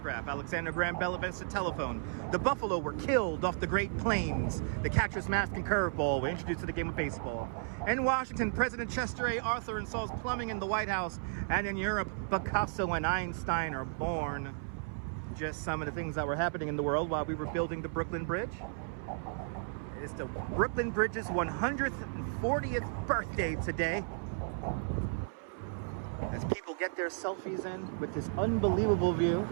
Alexander Graham Bell invents the telephone. The Buffalo were killed off the Great Plains. The catcher's mask and curveball were introduced to the game of baseball. In Washington, President Chester A. Arthur installs plumbing in the White House. And in Europe, Picasso and Einstein are born. Just some of the things that were happening in the world while we were building the Brooklyn Bridge. It's the Brooklyn Bridge's 140th birthday today. As people get their selfies in with this unbelievable view.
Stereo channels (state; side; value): silent; left; 55 dB below the other